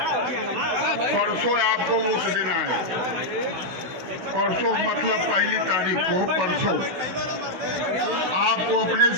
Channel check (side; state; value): left; late; 16 ms